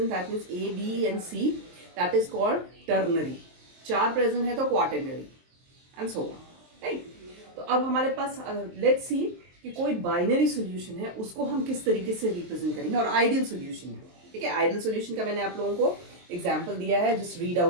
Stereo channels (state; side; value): late; left; 23 ms